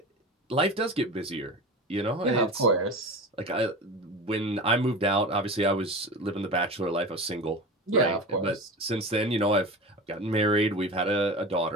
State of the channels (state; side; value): normal; both; correlation 0.30